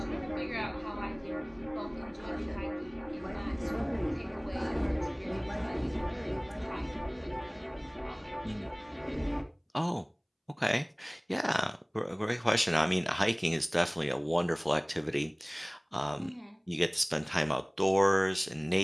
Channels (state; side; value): identical; both; correlation 1.00